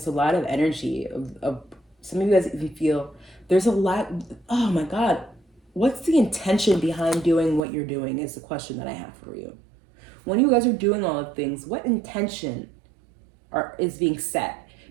a lot of energy. Of some of you guys even feel there's a lot, oh my God, what's the intention behind doing what you're doing is the question that I have for you. When you guys are doing all of things, what intention is being set?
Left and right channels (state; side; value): drops out; left; at 7.7 s